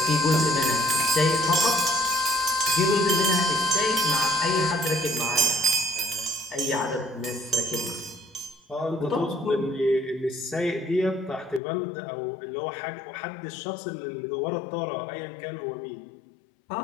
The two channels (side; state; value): right; drops out; at 11.6 s